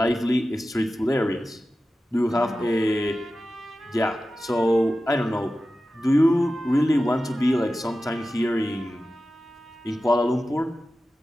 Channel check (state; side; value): normal; both; correlation 0.94